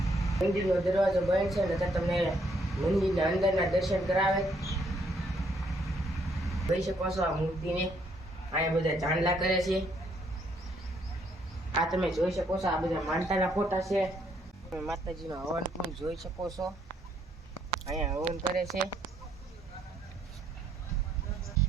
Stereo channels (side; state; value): both; normal; correlation 0.70